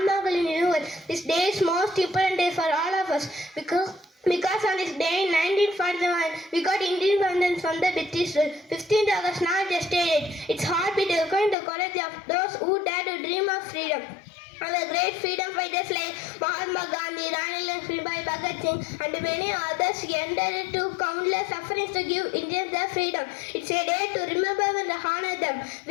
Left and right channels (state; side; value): drops out; right; at 11.6 s